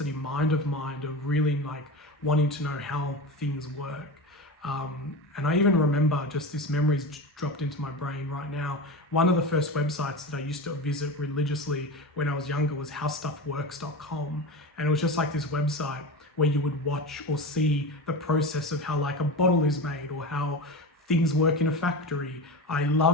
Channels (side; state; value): both; normal; correlation 0.25